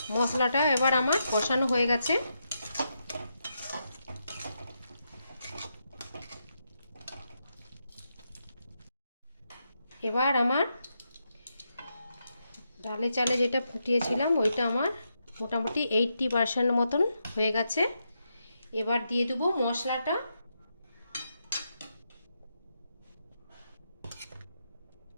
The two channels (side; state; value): both; inverted; correlation -0.83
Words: মশলাটা এবার আমার কষানো হয়ে গেছে। এবার আমার ডালে চালে যেটা ফুটিয়েছিলাম ওইটা আমার মোটামুটি 80% মতন হয়ে গেছে। এবার দিয়ে দেবো মশলাটা।